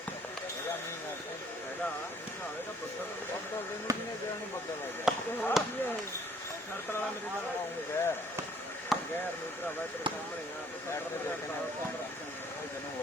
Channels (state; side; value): normal; both; correlation 0.60